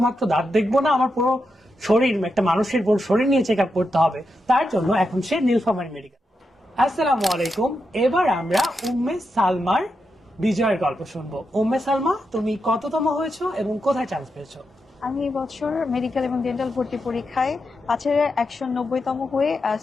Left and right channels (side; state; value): both; normal; correlation 0.86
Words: দাঁত দেখবো না, আমার পুরো শরীর, একটা মানুষের পুরো শরীর নিয়ে চেক আপ করতে হবে। তার জন্য এখন সে নীলফামারী মেডিকেল। আসসালামু আলাইকুম। এবার আমরা উম্মে সালমার বিজয়ের গল্প শুনবো। উম্মে সালমা, তুমি কততম হয়েছো এবং কোথায় চান্স পেয়েছো? আমি এই বছর মেডিকেল এবং ডেন্টাল ভর্তি পরীক্ষায় 190তম হয়ে